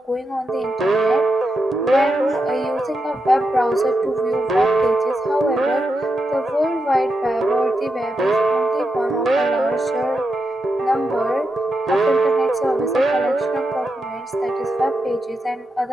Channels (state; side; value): normal; both; correlation 0.86